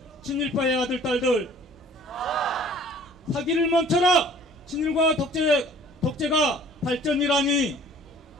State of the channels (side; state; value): both; normal; correlation 0.52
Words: 친일파의 아들, 딸들, 사기를 멈춰라! 친일과 독재가 발전이라니,